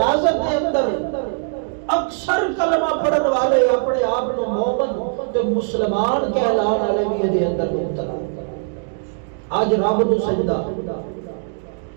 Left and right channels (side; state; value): left; silent; digital silence